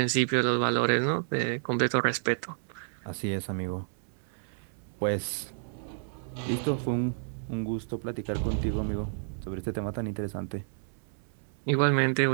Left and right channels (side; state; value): left; silent; 58 dB below the other